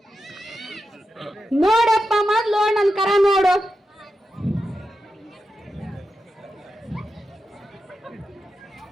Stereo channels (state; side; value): normal; both; correlation 0.89